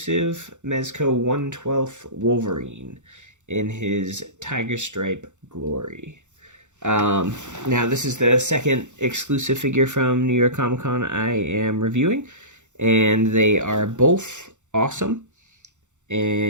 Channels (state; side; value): late; left; 0.85 ms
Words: Mezco 1/12 Wolverine in his Tiger Stripe glory. Now, this is the second exclusive figure from New York Comic Con I am reviewing, and they are both awesome,